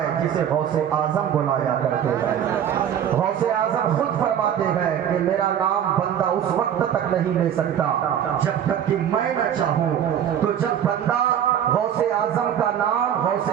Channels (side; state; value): left; quieter; 9.5 dB